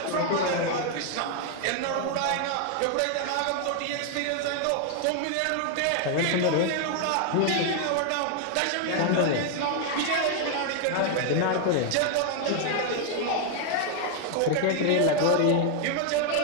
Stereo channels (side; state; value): both; different; correlation 0.00